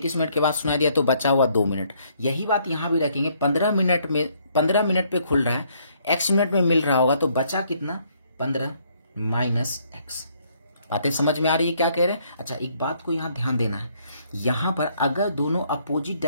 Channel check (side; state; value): both; inverted; correlation -0.68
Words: मिनट के बाद सुनाई दिया तो बचा हुआ 2 मिनट। यही बात यहाँ भी रखेंगे। 15 मिनट पे खुल रहा है, x मिनट में मिल रहा होगा, तो बचा कितना, 15 माइनस x। बातें समझ में आ रही है क्या कह रहे हैं। अच्छा, एक बात को यहाँ ध्यान देना है, यहाँ पर अगर दोनों अपोजिट